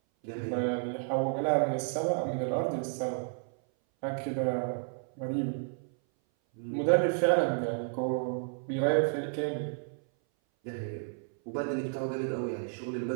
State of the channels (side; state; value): left; silent; 57 dB below the other